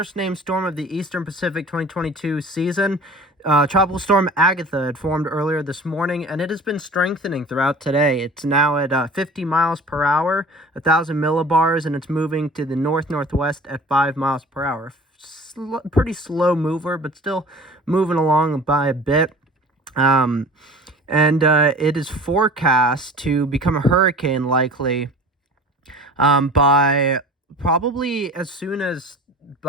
named storm of the Eastern Pacific 2022 season. Tropical Storm Agatha had formed earlier this morning, and it has been strengthening throughout today. It's now at 50 miles per hour, 1,000 millibars, and it's moving to the north-northwest at 5 miles per hour. Pretty slow mover, but still moving along by a bit. It is forecast to become a hurricane likely by probably as soon as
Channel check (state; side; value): normal; both; correlation 0.42